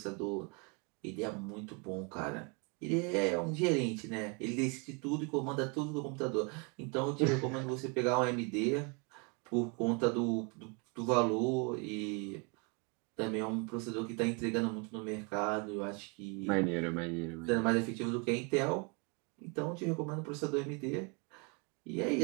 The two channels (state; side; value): quieter; left; 33.4 dB